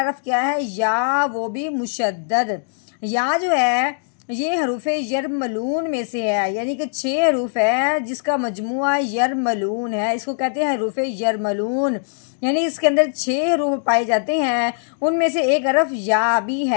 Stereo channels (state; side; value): silent; right; digital silence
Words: حرف کیا ہے، یا، وہ بھی مشدد۔ یا جو ہے یہ حروف یرملون میں سے ہے، یعنی کہ 6 حروف ہے جس کا مجموعہ یرملون ہے، اس کو کہتے ہیں حروف یرملون، یعنی اس کے اندر 6 حروف پائے جاتے ہیں، ان میں سے ایک حرف یا بھی